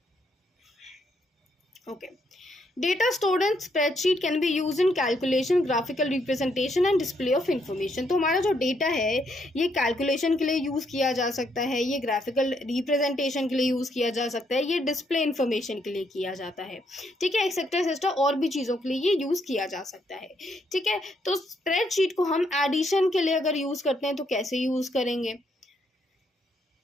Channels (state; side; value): normal; both; correlation 0.74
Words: okay. Data stored in spreadsheet can be use in calculation, graphical representation and display of information. तो हमारा जो डेटा है ये कैलकुलेशन के लिए यूज़ किया जा सकता है, ये ग्राफिकल रिप्रेजेंटेशन के लिए यूज़ किया जा सकता है, ये डिस्प्ले इंफॉर्मेशन के लिए किया जाता है। ठीक है, एक्सेट्रा और भी चीज़ों के लिए ये यूज़ किया जा सकता है। ठीक है, तो स्प्रेडशीट को हम एडिशन के लिए अगर यूज़ करते हैं तो कैसे यूज़ करेंगे?